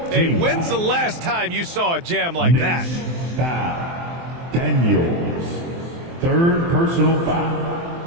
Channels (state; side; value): late; left; 23 ms